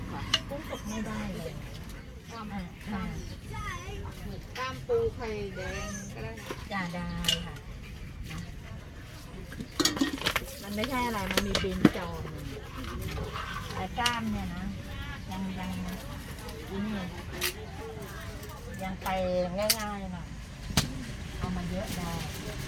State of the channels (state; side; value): identical; both; correlation 1.00